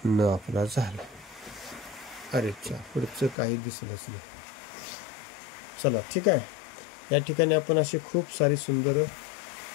न आपला झाला. अरे चा पुढचं काही दिसलंच नाही. चला ठीक आहे. या ठिकाणी आपण असे खूप सारी सुंदर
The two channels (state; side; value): drops out; right; at 3.4 s